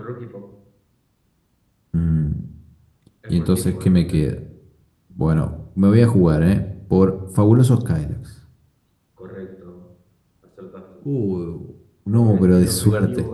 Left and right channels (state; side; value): identical; both; correlation 1.00